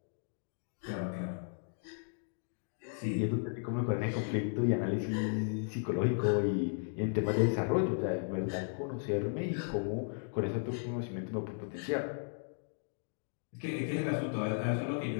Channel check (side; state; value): right; silent; digital silence